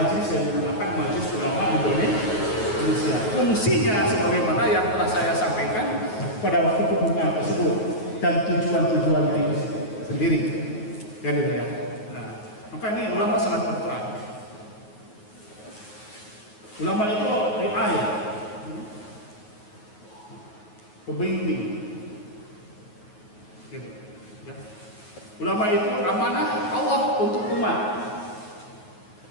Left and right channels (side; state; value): right; late; 9.6 ms